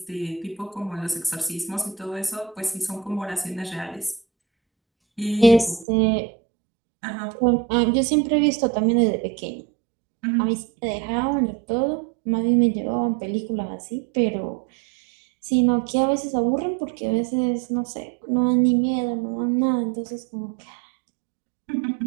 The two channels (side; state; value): left; drops out; at 5.9 s